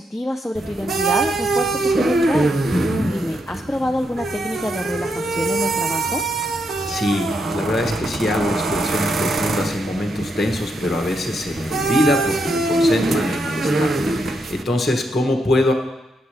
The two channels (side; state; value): both; normal; correlation 0.80